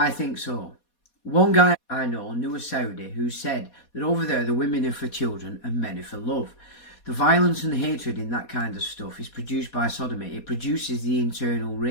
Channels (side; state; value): right; late; 4.2 ms